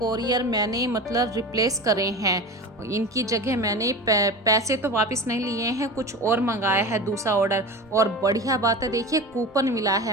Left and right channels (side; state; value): both; normal; correlation 0.30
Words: मैंने मतलब रिप्लेस करे हैं। इनकी जगह मैंने पैसे तो वापस नहीं लिए हैं, कुछ और मंगाया है दूसरा ऑर्डर। और बढ़िया बात है, देखिए कूपन मिला